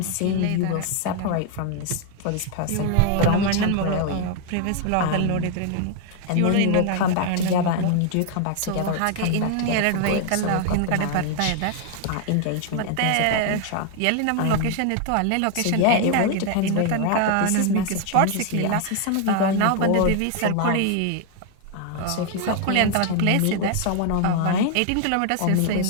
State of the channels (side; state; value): both; different; correlation 0.00